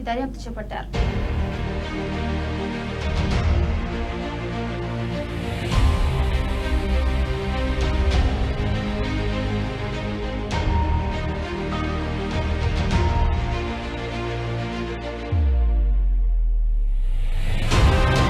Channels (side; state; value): both; identical; correlation 1.00